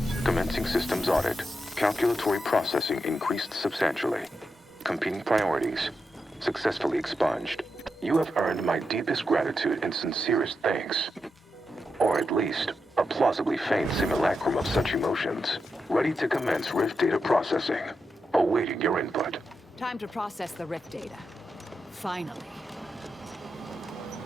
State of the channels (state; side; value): normal; both; correlation 0.87